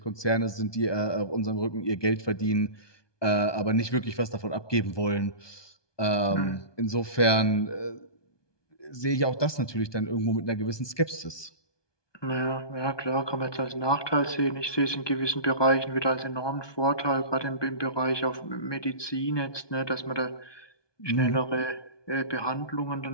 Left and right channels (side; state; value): right; late; 1.2 ms